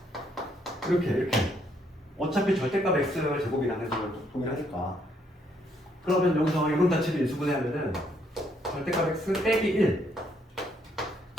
이렇게 어차피 절대값 x의 제곱이라는 걸 동일하니까. 그러면 여기서 이런 자체를 인수분해하면은 절대값 x 빼기 1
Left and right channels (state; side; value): normal; both; correlation 0.71